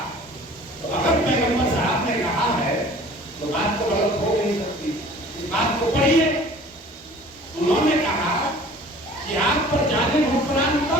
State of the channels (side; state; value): both; normal; correlation 0.48